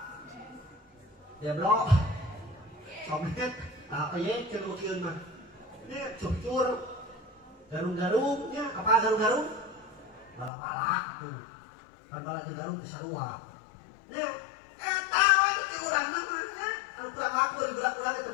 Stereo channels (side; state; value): right; drops out; at 10.5 s